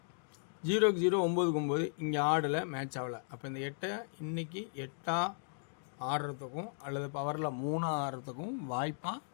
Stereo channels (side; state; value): right; silent; digital silence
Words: 0க்கு 0 9க்கு 9 இங்கே ஆடலை, மேட்ச் ஆகலை. அப்போ இந்த 8 இன்றைக்கி 8ஆ ஆடுறதுக்கும் அல்லது பவரில் 3ஆ ஆடுறதுக்கும் வாய்ப்பாக